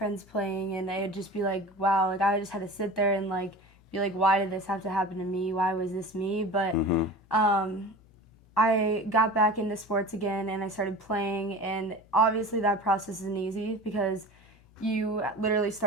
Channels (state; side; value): normal; both; correlation 0.36